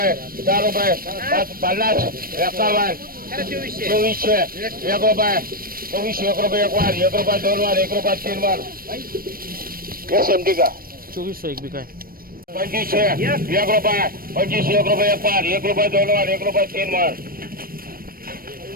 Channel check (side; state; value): left; late; 0.42 ms